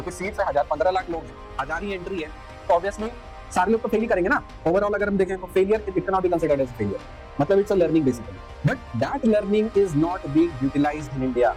सीट्स है 1000-15 लाख लोग हैं, 1000 ही एंट्री है, तो ऑब्वियसली सारे लोग तो फेल ही करेंगे ना। ओवरऑल अगर हम देखें तो failure it can not be considered as failure, मतलब it's a learning basically, but that learning is not being utilised in India,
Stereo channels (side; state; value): both; identical; correlation 1.00